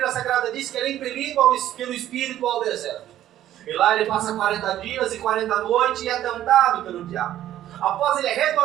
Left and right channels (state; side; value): quieter; left; 12.5 dB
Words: Sagrada diz que ele é impelido pelo Espírito ao deserto. E lá ele passa 40 dias e 40 noites e é tentado pelo diabo. Após ele